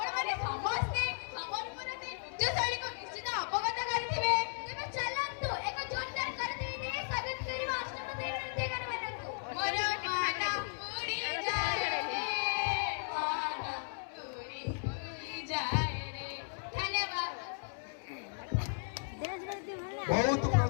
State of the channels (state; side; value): silent; right; 54 dB below the other